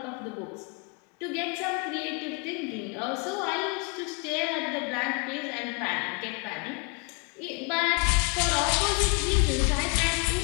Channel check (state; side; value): quieter; right; 34.4 dB